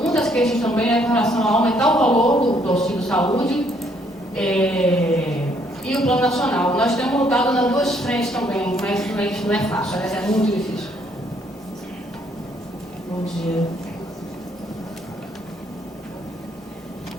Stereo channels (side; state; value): both; normal; correlation 0.68